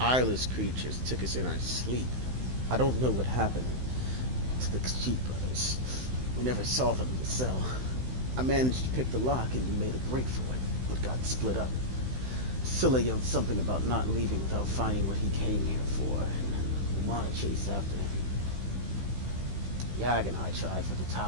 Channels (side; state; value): left; late; 16 ms